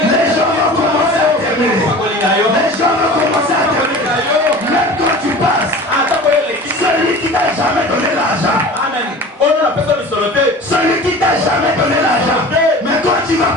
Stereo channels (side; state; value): both; normal; correlation 0.39